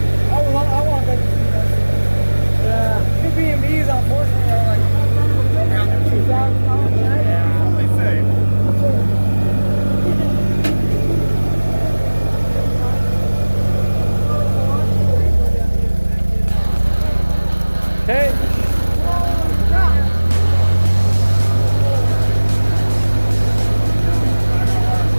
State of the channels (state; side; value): inverted; both; correlation -1.00